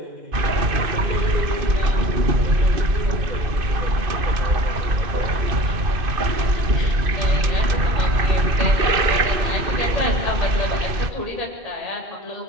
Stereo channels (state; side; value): late; left; 2.5 ms